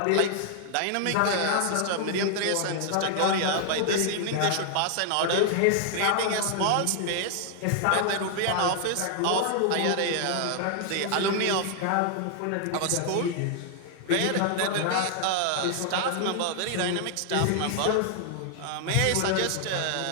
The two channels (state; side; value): different; both; correlation 0.00